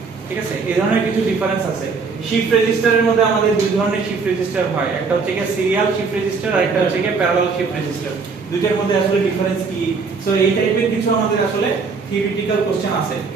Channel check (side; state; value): left; quieter; 4.8 dB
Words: ঠিক আছে, এই ধরনের কিছু ডিফারেন্স আছে। শিফট রেজিস্টারের মধ্যে আমাদের দুই ধরনের শিফট রেজিস্টার হয়, একটা হচ্ছে কি সিরিয়াল শিফট রেজিস্টার আর একটা হচ্ছে কি প্যারালাল শিফট রেজিস্টার। দুইটার মধ্যে আসলে ডিফারেন্স কি, সো এই টাইপের কিছু আমাদের আসলে থিওরিটিক্যাল কোশ্চেন আছে।